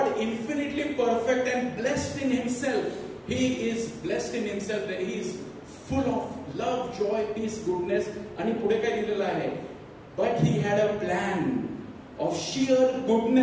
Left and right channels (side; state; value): both; identical; correlation 1.00